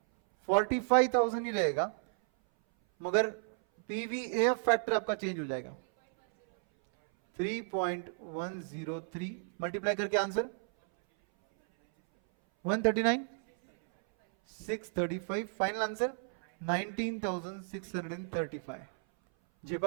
45,000 ही रहेगा, मगर पीवीएफ फैक्टर आपका चेंज हो जाएगा 3.103। मल्टीप्लाई करके आंसर 139, 635। Final answer 19,635।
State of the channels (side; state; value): left; silent; 56 dB below the other